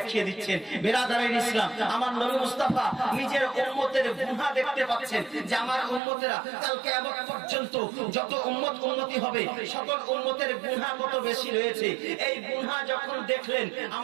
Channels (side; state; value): left; drops out; at 6.0 s